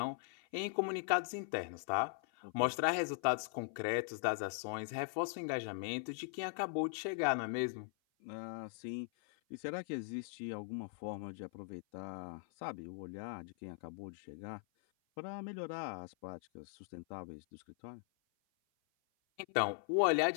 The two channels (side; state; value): right; silent; 51 dB below the other